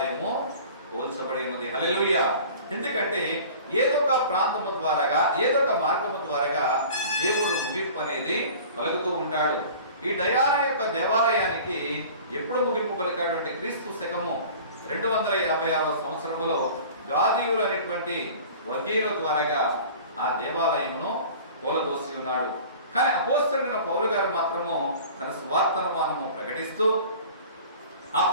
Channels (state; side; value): inverted; both; correlation -0.43